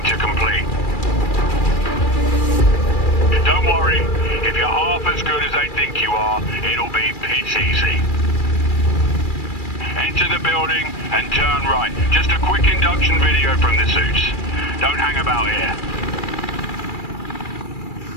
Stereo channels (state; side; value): late; right; 2.4 ms